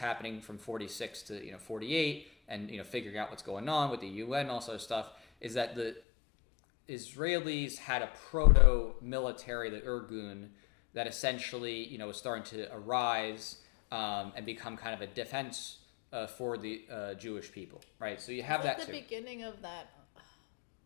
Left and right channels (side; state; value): right; drops out; at 6.0 s